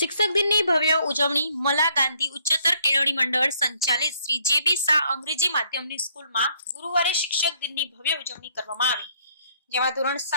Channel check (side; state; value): both; inverted; correlation -0.67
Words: દિનની ભવ્ય ઉજવણી મલા ગાંધી ઉચ્ચતર કેળવણી મંડળ સંચાલિત શ્રી જે.બી. શાહ અંગ્રેજી માધ્યમની સ્કૂલમાં ગુરુવારે શિક્ષક દિનની ભવ્ય ઉજવણી કરવામાં આવી, જેમાં ધોરણ